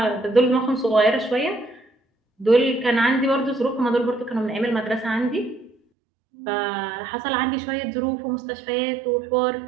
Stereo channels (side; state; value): left; drops out; at 5.8 s